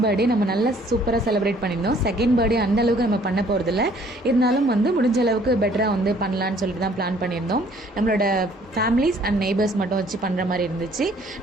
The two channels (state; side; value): normal; both; correlation 0.59